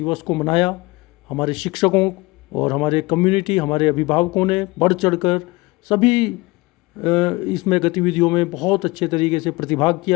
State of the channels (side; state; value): right; quieter; 22.8 dB